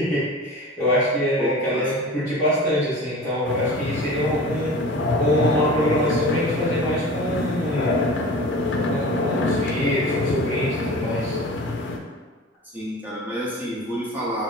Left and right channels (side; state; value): both; normal; correlation 0.37